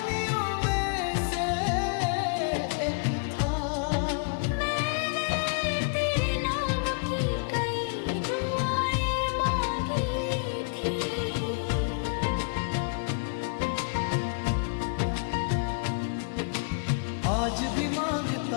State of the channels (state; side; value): quieter; right; 38.6 dB